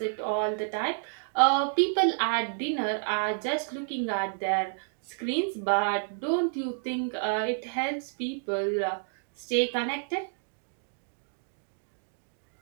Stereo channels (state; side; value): silent; left; digital silence